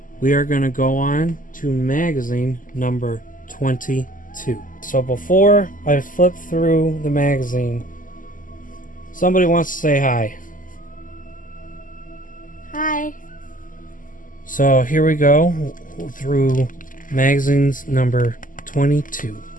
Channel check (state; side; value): late; right; 0.38 ms